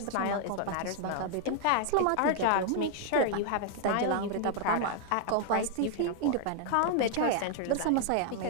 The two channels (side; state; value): both; different; correlation 0.00